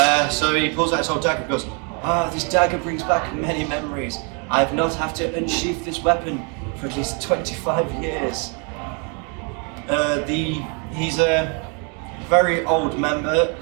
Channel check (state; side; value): quieter; left; 36.3 dB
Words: So he pulls out his old dagger and goes, this dagger brings back many memories. I have not had to unsheath this weapon for at least 25 years. He's a very old member.